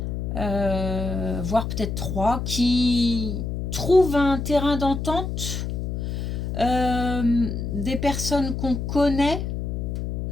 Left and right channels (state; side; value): noise; left; hum, 3 dB below the sound